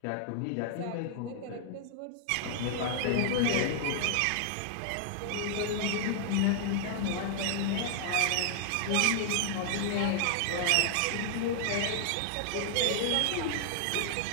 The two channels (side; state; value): both; different; correlation -0.01